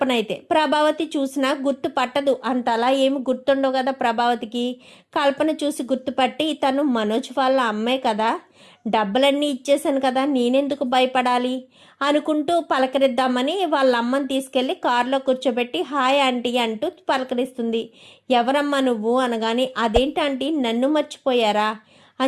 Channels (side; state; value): both; identical; correlation 1.00